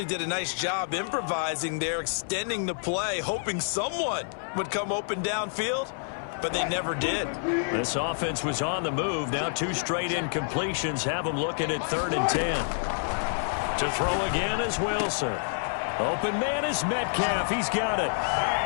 did a nice job improvising there, extending the play, hoping someone would come open downfield, but they never did. This offense was on the move. Now 2 straight incompletions have them looking at 3rd and 10. To throw again is Wilson. Open man is Metcalf. He's got it.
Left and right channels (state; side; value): silent; right; digital silence